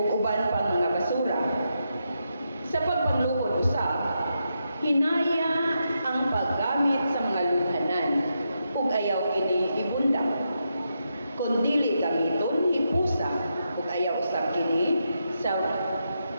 uban pang mga basura. Sa pagpanglukod usab, hinaya ang paggamit sa mga lunghanan ug ayaw kini ibunda. Kung dili gamiton, hipusa ug ayaw usab kini sa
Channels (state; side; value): inverted; both; correlation -0.83